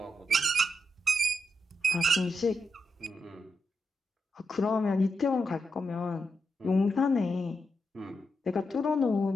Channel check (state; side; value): normal; both; correlation 0.85